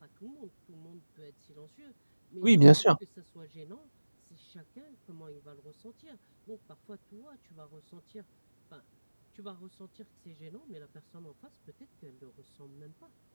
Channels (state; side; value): inverted; both; correlation -1.00